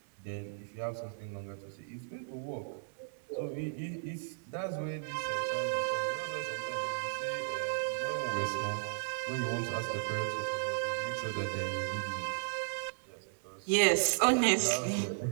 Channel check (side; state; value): left; silent; digital silence